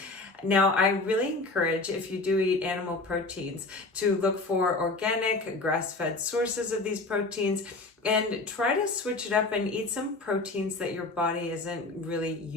Now, I really encourage, if you do eat animal proteins, to look for organic, grass-fed sources of these proteins and try to switch it up and eat some proteins that your body isn't really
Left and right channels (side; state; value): right; quieter; 3.2 dB